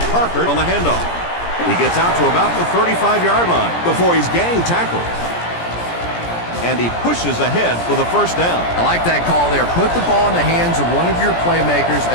Parker on the handoff. He gets out to about the 35-yard line before he's gang tackled. And he pushes ahead for the first down. I like that call there. Put the ball in the hands of one of your playmakers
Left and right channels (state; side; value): late; right; 17 ms